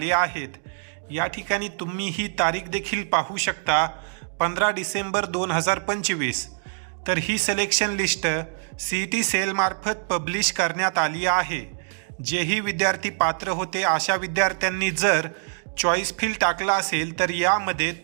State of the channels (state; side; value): silent; left; digital silence